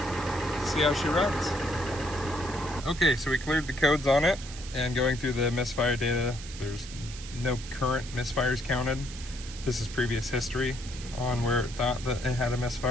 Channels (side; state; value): right; noise; hiss, 14 dB below the sound